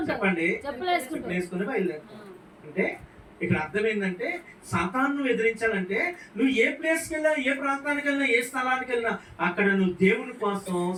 చెప్పండి. చెప్పులు వేసుకుని బయలుదేరుతావు. అంటే ఇక్కడ అర్థం ఏంటంటే సాతాను ఎదిరించాలంటే నువ్వు ఏ ప్లేస్కి వెళ్ళినా, ఏ ప్రాంతానికి వెళ్ళినా, ఏ స్థలానికి వెళ్ళినా అక్కడ నువ్వు దేవుని కోసం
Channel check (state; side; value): identical; both; correlation 1.00